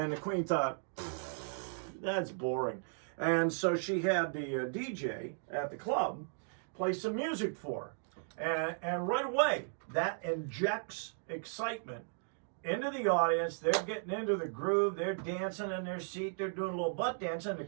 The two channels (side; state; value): left; silent; digital silence